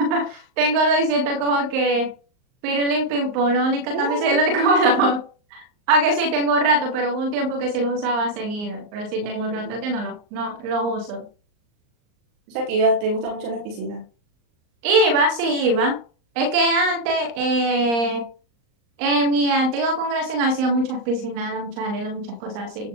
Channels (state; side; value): late; left; 38 ms